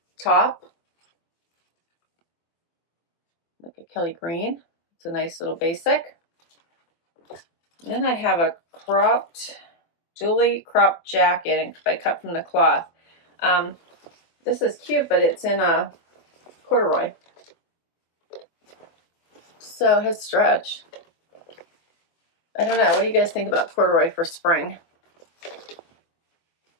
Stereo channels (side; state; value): right; late; 24 ms